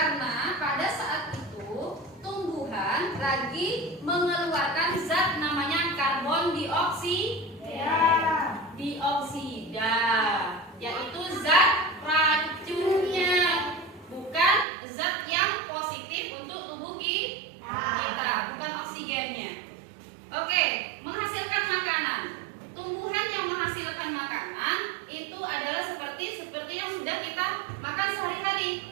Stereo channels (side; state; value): left; drops out; at 14.7 s